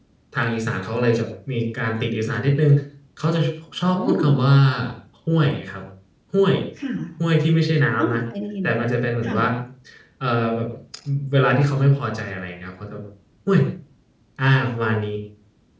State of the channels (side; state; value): both; identical; correlation 1.00